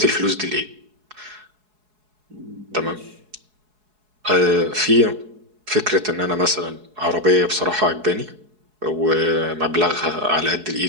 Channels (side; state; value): left; late; 4.7 ms